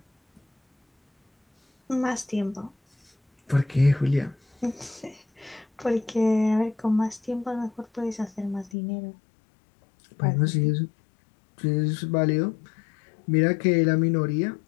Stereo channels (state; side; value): drops out; right; at 8.8 s